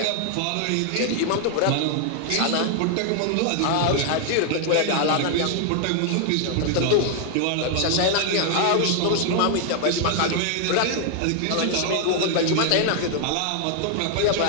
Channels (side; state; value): both; different; correlation 0.00